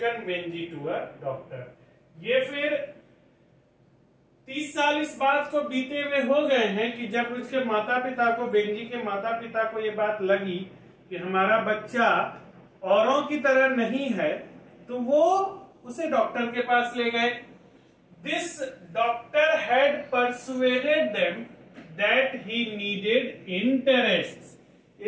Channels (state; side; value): identical; both; correlation 1.00